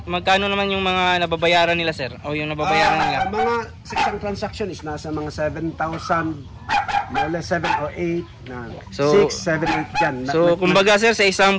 magkano naman yung mga nababayaran nila sir? O yung nababayaran nila? Mga sa isang transaction is nasa mga 7,000, more or less 7 or 8 na. So 6, 7, 8 dyan. So kumbaga sir, sa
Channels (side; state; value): both; identical; correlation 1.00